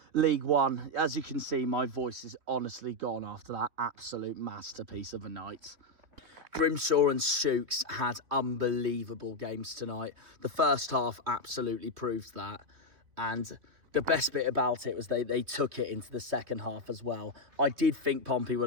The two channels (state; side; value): late; left; 3.0 ms